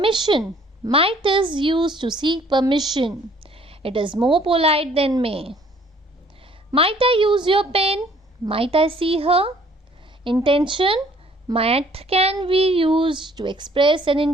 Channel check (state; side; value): normal; both; correlation 0.59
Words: might is used to seek permission. It is more polite than may. Might I use your pen? Might I see her? Intention, might can be used to express an